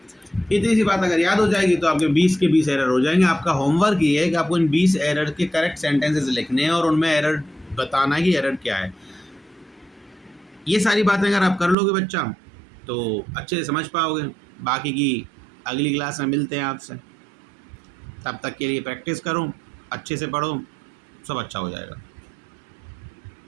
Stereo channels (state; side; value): drops out; left; at 11.8 s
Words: इतनी सी बात अगर याद हो जाएगी तो आपके 20 के 20 एरर हो जाएंगे। आपका होमवर्क ये है कि आपको इन 20 एरर के करेक्ट सेंटेंसेस लिखने हैं और उनमें एरर बताना है कि एरर क्या है। ये सारी बातें अगर आप कर लोगे बच्चा तो अच्छे से समझ पाओगे। बाकी की अगली क्लास में मिलते हैं आपसे, तब तक के लिए प्रैक्टिस करो, अच्छे से पढ़ो, सब अच्छा हो जाएगा।